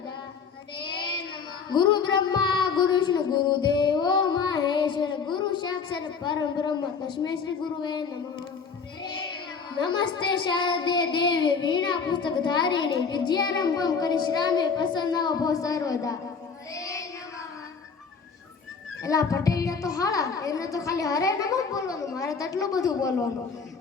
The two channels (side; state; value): right; quieter; 5.6 dB